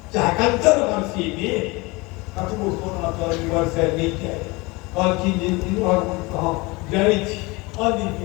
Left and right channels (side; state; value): right; quieter; 24.6 dB